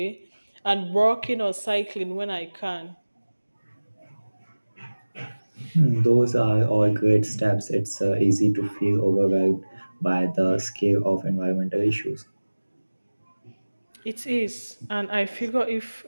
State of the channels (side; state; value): both; inverted; correlation -1.00